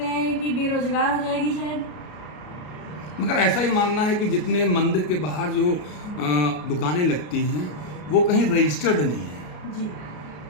हैं कि बेरोजगार हो जाएगी शायद। मगर ऐसा ही मानना है कि जितने मंदिर के बाहर जो दुकानें लगती हैं वो कहीं रजिस्टर्ड नहीं है जी,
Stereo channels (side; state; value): right; late; 33 ms